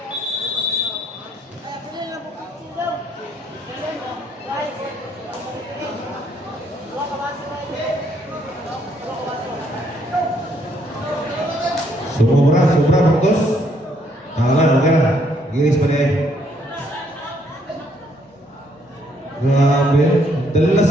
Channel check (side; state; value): both; normal; correlation 0.69